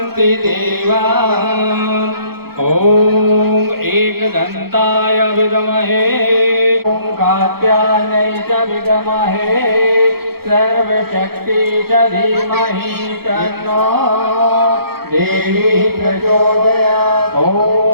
देवा ओम एकदन्ताय विद्महे ओम कात्यायनै च विद्महे सर्वशक्ति च धीमहि तन्नो देवी प्रचोदयात्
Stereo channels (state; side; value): late; left; 0.95 ms